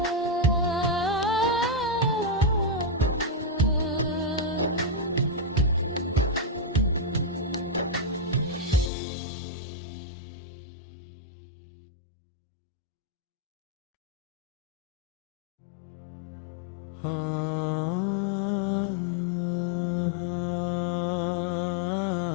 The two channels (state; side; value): drops out; right; at 8.9 s